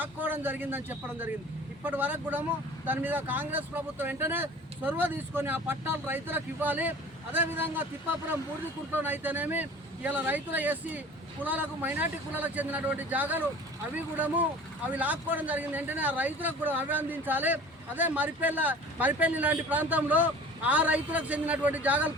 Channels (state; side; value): normal; both; correlation 0.43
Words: జరిగిందని చెప్పడం జరిగింది. ఇప్పటి వరకు కూడా దాని మీద కాంగ్రెస్ ప్రభుత్వం వెంటనే చొరవ తీసుకొని ఆ పట్టాలు రైతులకు ఇవ్వాలి. అదేవిధంగా తిప్పాపురం బూర్దికుంటలోనైతేనేమి ఇలా రైతుల ఎస్సీ కులాలకు మైనార్టీ కులాలకు చెందినటువంటి జాగాలు అవి లాక్కోవడం జరిగింది. వెంటనే ఆ రైతులకు కూడా అవి అందించాలి. అదే మరిపల్లి లాంటి ప్రాంతంలో ఆ రైతులకు చెందినటువంటి జాగాలు